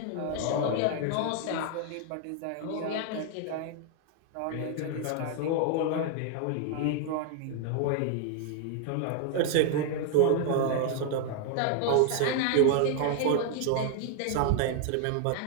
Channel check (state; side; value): different; both; correlation 0.00